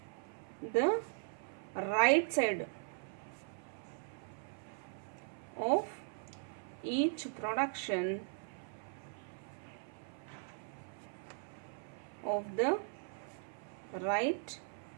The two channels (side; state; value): left; silent; 51 dB below the other